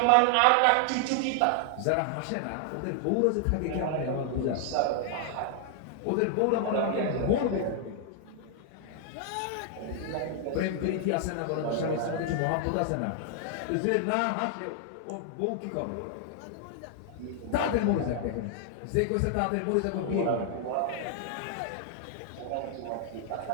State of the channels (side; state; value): both; different; correlation 0.00